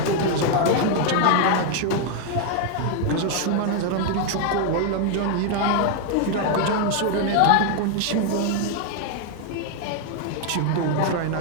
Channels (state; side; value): different; both; correlation 0.00